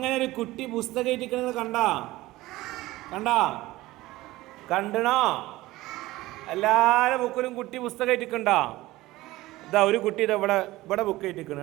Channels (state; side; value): quieter; left; 18.2 dB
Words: ഒരു കുട്ടി പുസ്തകം ഇരിക്കുന്നത് കണ്ടണോ? എല്ലാവരുടെ ബുക്കിലും കുട്ടി പുസ്തകം ഇട്ടിക്കണ്ടോ? ഇതാ ഒരു കുട്ടി ഇതാ ഇവിടെ ബുക്ക് ഇട്ടിക്കണം,